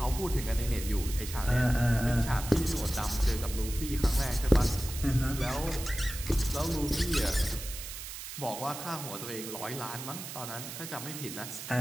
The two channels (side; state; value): right; noise; hiss, 9 dB below the sound